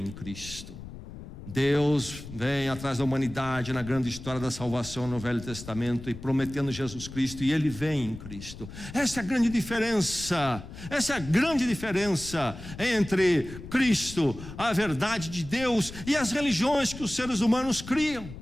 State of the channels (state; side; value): noise; left; rumble, 13 dB below the sound